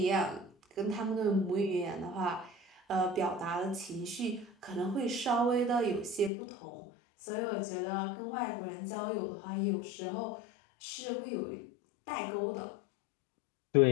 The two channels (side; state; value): right; drops out; at 6.3 s